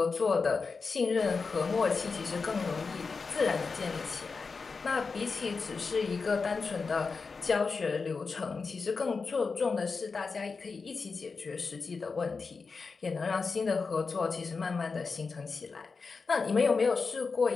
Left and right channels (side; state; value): right; quieter; 4.7 dB